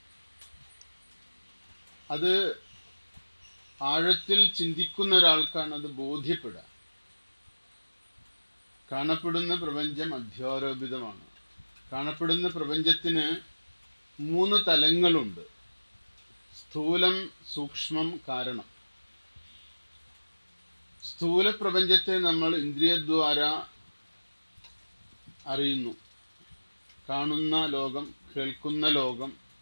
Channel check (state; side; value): inverted; both; correlation -1.00